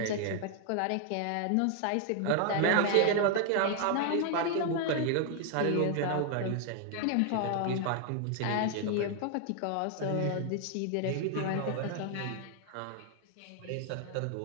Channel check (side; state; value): both; different; correlation 0.00